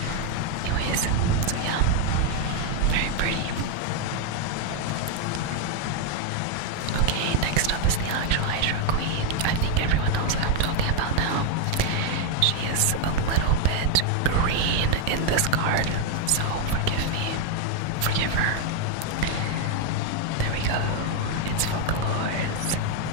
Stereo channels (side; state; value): both; different; correlation 0.01